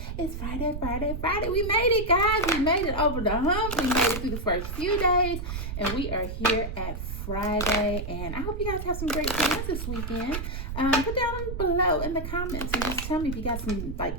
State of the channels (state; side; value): noise; right; rumble, 5 dB below the sound